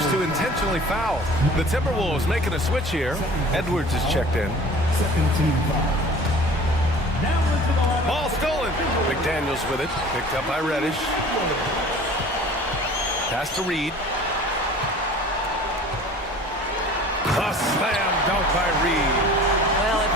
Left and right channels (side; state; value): both; normal; correlation 0.45